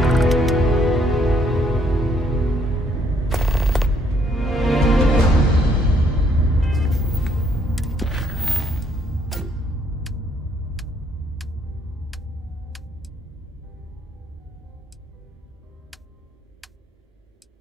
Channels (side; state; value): both; normal; correlation 0.68